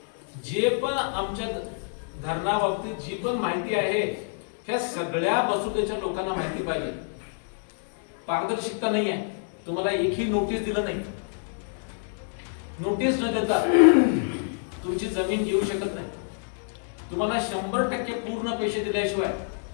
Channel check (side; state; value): right; silent; digital silence